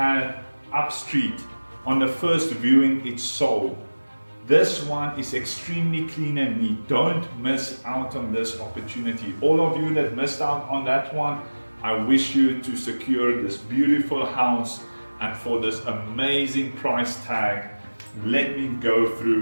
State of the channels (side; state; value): both; inverted; correlation -1.00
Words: up street on the first viewing, it sold. This one is extremely clean and neat. Don't miss out on this opportunity. All of you that missed out on that one, I wish you to secure this beautiful house, and for this amazing price tag, let me go